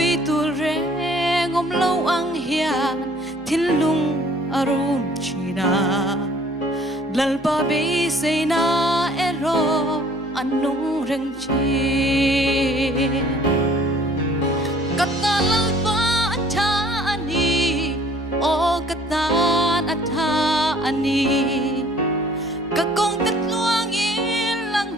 tu re ngom lâu ang hian thin lung arum china lalpa be say na ero anung reng chi kata lalpa atha ani o kata atha ani kakong tatluang ilang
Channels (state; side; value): normal; both; correlation 0.55